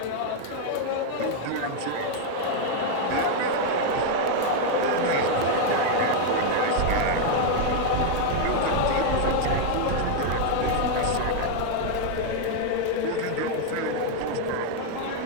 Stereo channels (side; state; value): both; different; correlation 0.00